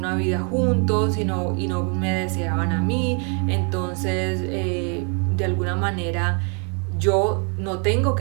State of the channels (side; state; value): left; quieter; 38.0 dB